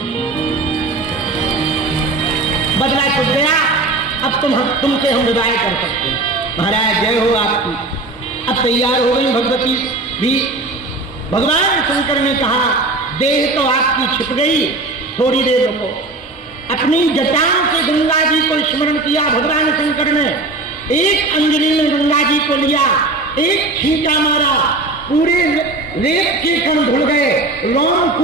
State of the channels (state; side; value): quieter; left; 3.1 dB